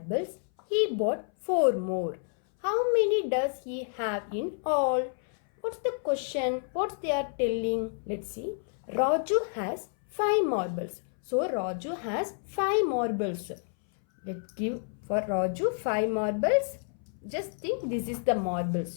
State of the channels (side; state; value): right; silent; 58 dB below the other